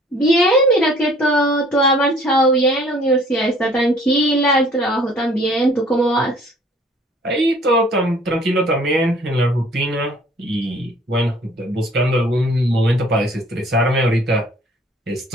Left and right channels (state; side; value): normal; both; correlation 0.55